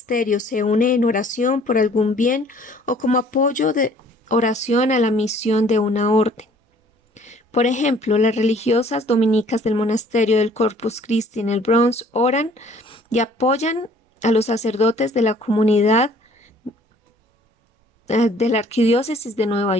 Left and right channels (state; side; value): normal; both; correlation 0.56